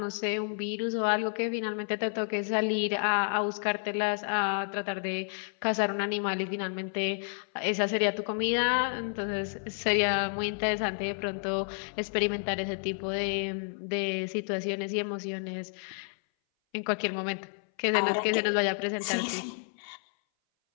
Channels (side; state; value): right; silent; 58 dB below the other